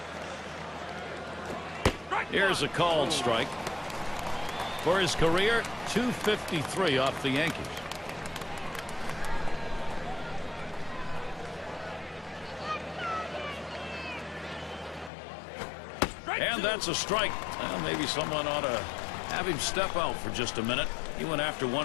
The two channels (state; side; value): drops out; right; at 15.1 s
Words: Here's a called strike. For his career, .253 off the Yankees. And that's a strike. Well, maybe someone ought to have him step out for just a minute. He went after